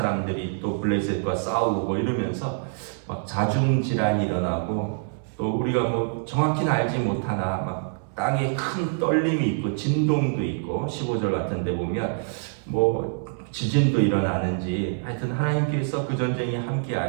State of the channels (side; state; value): left; silent; 61 dB below the other